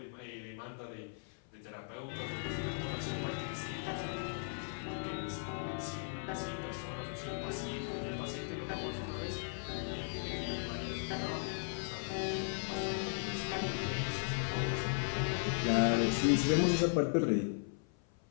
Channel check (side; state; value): right; silent; 53 dB below the other